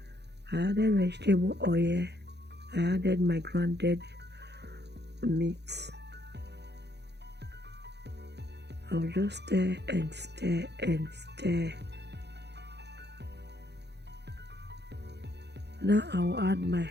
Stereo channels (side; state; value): left; late; 0.49 ms